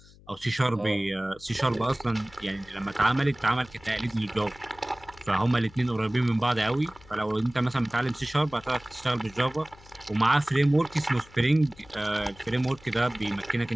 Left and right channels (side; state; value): left; noise; hum, 24 dB below the sound